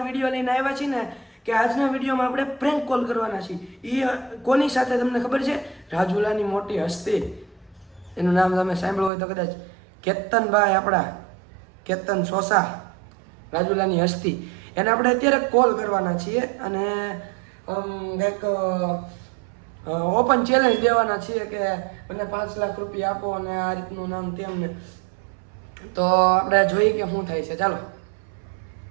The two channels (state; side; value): drops out; left; at 9.1 s